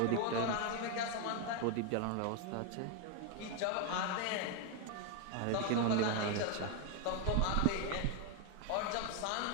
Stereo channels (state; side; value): different; both; correlation 0.01